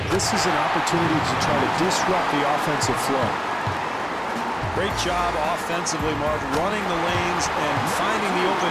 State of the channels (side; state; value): both; identical; correlation 1.00